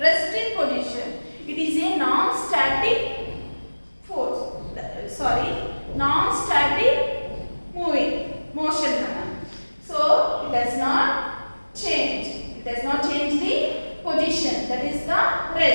resting position. It is a non-static force. Sorry, non-static motion. So it does not change. It does not change the position. That is the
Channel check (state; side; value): inverted; both; correlation -1.00